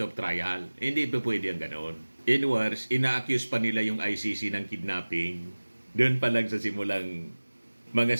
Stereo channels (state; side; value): inverted; both; correlation -1.00